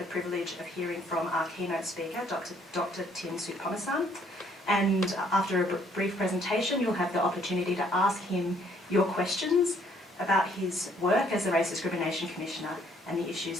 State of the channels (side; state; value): both; normal; correlation 0.65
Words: privilege of hearing from our keynote speaker, Dr. Soutphommasane, and after a brief presentation, you'll have the opportunity to ask him your questions about his work as the Race Discrimination Commissioner and the